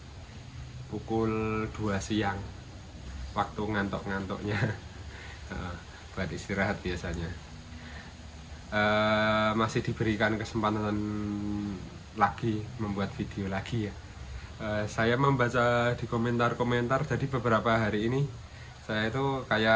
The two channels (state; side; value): identical; both; correlation 1.00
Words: pukul 2 siang, waktu ngantuk-ngantuknya buat istirahat biasanya, masih diberikan kesempatan lagi membuat video lagi ya. Saya membaca di komentar-komentar, jadi beberapa hari ini saya itu